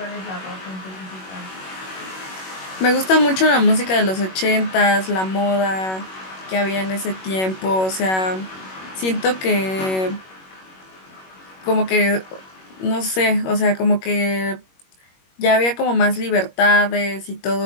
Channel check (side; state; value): right; late; 21 ms